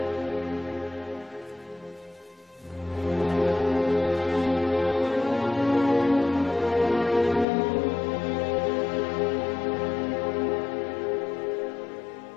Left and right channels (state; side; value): drops out; right; at 7.5 s